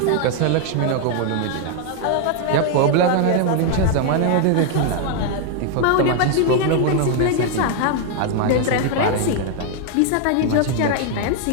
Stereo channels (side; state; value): both; different; correlation 0.00